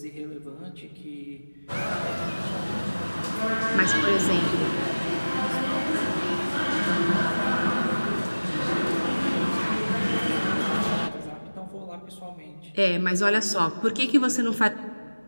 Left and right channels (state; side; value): inverted; both; correlation -1.00